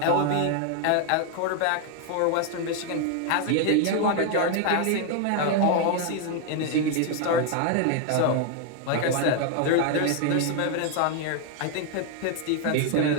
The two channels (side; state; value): both; different; correlation 0.01